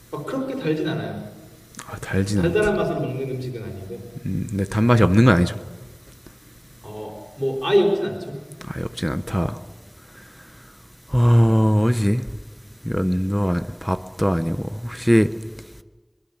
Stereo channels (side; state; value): both; identical; correlation 1.00